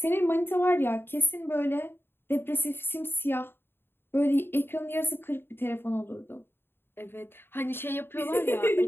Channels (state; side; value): late; right; 0.11 ms